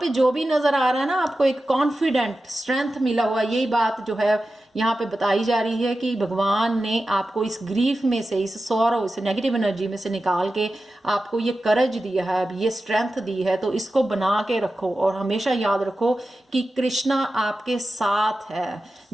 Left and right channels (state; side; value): normal; both; correlation 0.93